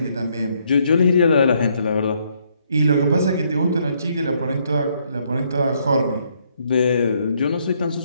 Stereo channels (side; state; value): both; inverted; correlation -0.71